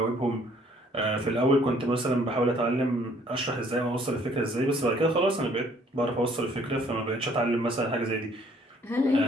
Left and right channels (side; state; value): both; normal; correlation 0.60